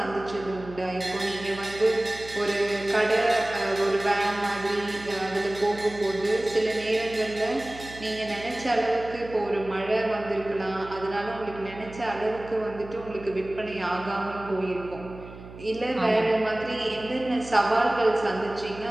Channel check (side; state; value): right; noise; hum, 16 dB below the sound